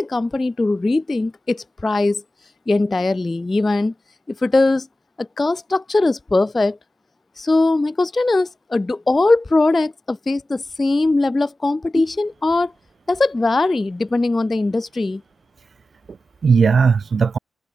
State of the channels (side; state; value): both; normal; correlation 0.94